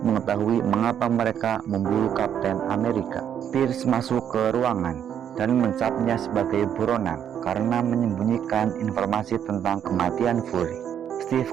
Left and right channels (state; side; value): quieter; left; 9.2 dB